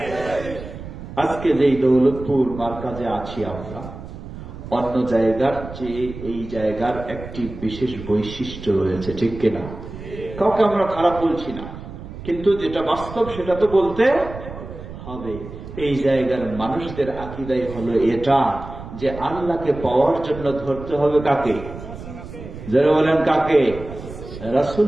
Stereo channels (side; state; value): right; noise; rumble, 12 dB below the sound